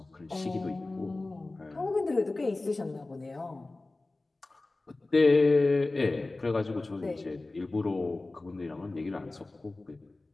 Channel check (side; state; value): right; quieter; 3.1 dB